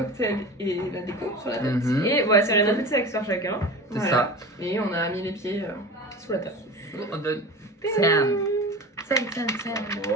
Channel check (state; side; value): normal; both; correlation 0.33